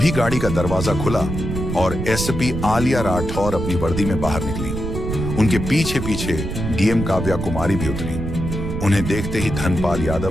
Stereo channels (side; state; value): right; noise; rumble, 5 dB below the sound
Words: गाड़ी का दरवाजा खुला और एसपी आलिया राठौर अपनी वर्दी में बाहर निकली। उनके पीछे पीछे डीएम काव्या कुमारी भी उतरी। उन्हें देखते ही धनपाल